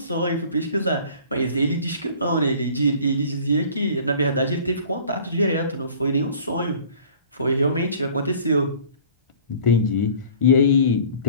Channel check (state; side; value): inverted; both; correlation -0.47